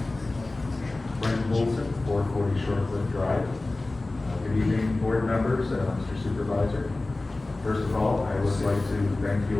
Brent Wilson, 440 Shortcliff Drive. Good evening, board members, Mr. Supervisor. First of all, I would like to thank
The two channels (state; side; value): quieter; right; 3.0 dB